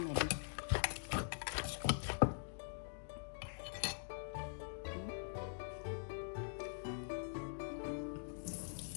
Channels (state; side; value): silent; right; digital silence